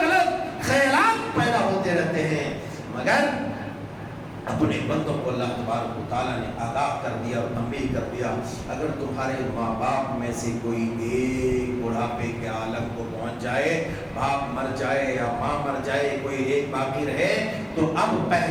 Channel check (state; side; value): identical; both; correlation 1.00